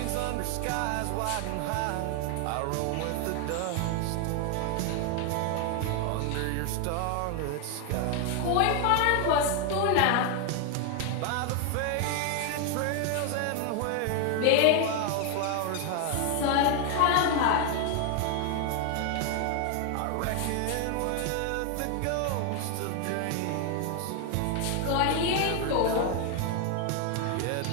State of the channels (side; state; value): both; different; correlation 0.01